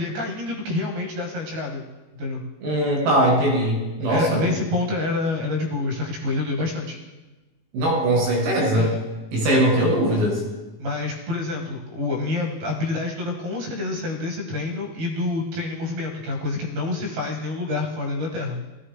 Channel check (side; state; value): left; late; 19 ms